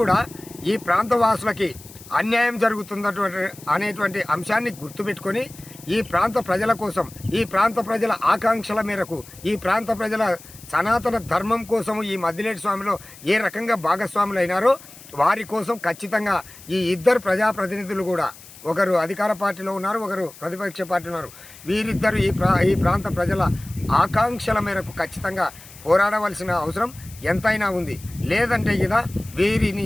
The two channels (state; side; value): noise; left; hiss, 19 dB below the sound